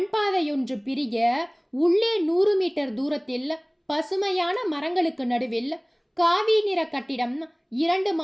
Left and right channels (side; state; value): both; identical; correlation 1.00